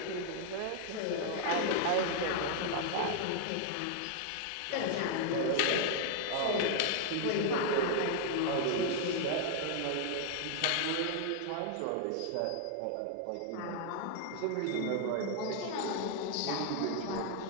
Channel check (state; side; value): different; both; correlation 0.00